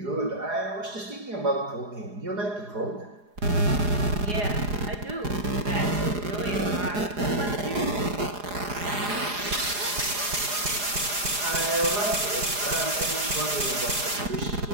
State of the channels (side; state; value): left; late; 4.9 ms